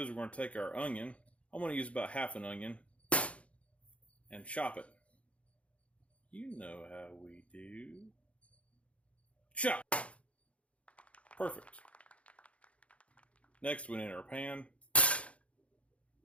is we're going to take our onion. I'm going to use about half an onion and chop it. You know how we do. Chop! Perfect. Next we need our pan.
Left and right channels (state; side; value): late; right; 0.063 ms